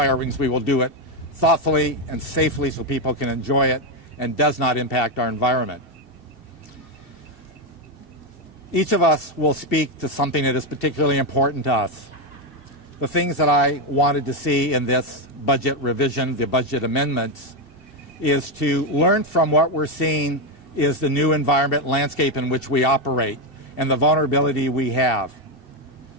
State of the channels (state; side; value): late; right; 2.7 ms